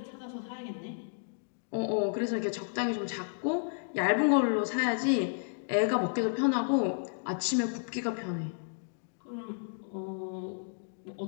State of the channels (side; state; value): right; silent; digital silence